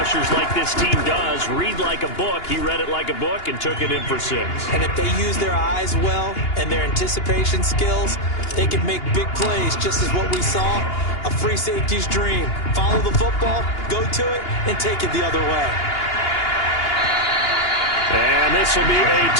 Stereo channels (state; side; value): late; right; 2.8 ms